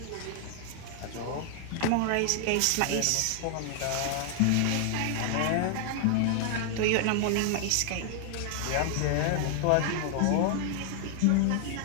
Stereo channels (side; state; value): both; different; correlation 0.00